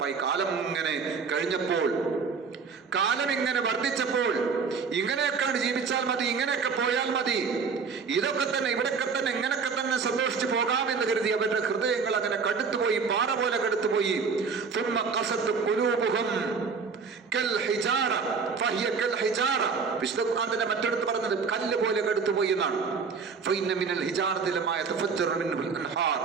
കാലം ഇങ്ങനെ കഴിഞ്ഞപ്പോൾ, കാലം ഇങ്ങനെ വർദ്ധിച്ചപ്പോൾ, ഇങ്ങനെയൊക്കെയാണ് ജീവിച്ചാൽ മതി, ഇങ്ങനെയൊക്കെ പോയാൽ മതി, ഇതൊക്കെ തന്നെ, ഇവിടൊക്കെ തന്നെ, ഇങ്ങനെയൊക്കെ തന്നെ സന്തോഷിച്ച് പോകാമെന്ന് കരുതി അവരുടെ ഹൃദയങ്ങൾ അങ്ങനെ കടുത്തുപോയി, പാറ പോലെ കടുത്തുപോയി. വിശുദ്ധ മറ്റെടുത്ത് പറഞ്ഞത് കല്ല് പോലെ കടുത്തുപോയി എന്നാണ്.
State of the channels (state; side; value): quieter; left; 5.3 dB